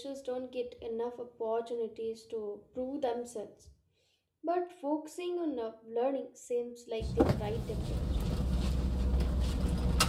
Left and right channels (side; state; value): both; identical; correlation 1.00